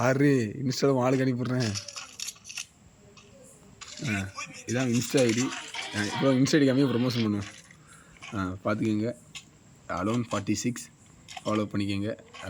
இன்ஸ்டாவில் ஆளுக்கு அனுப்பிடுறேன். இதான் இன்ஸ்டா ஐடி. இப்போ இன்ஸ்டா ஐடி கம்மியாக ப்ரொமோஷன் பண்ணுவேன். பார்த்துக்கோங்க. அலோன் 46 ஃபாலோ பண்ணிக்கோங்க.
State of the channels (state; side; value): identical; both; correlation 1.00